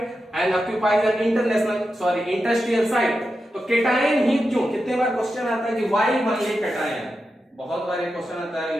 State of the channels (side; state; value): both; normal; correlation 0.89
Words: and occupies an industrial site। तो कैटायन ही क्यों, कितने बार क्वेश्चन आता है कि वाई मान ली कैटायन, बहुत बार ये क्वेश्चन आता है